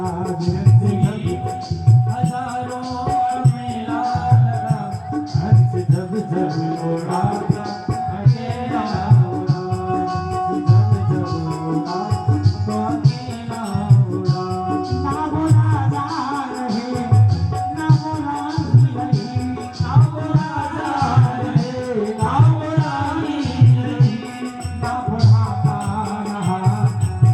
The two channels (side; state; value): both; identical; correlation 1.00